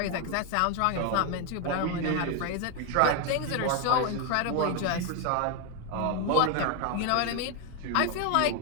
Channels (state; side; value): different; both; correlation 0.01